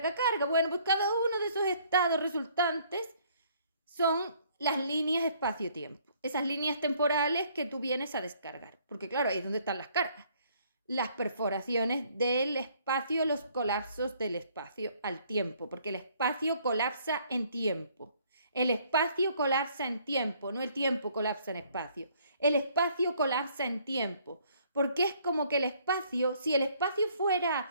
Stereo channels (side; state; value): both; inverted; correlation -0.63